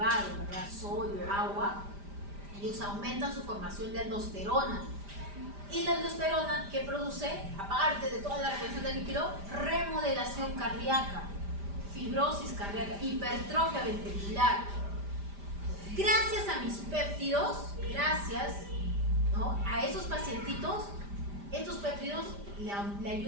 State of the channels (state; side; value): late; left; 5.0 ms